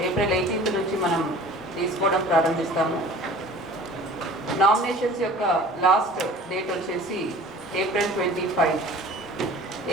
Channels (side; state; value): both; normal; correlation 0.45